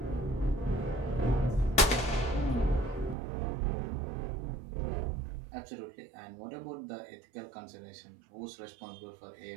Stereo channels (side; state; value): left; drops out; at 3.2 s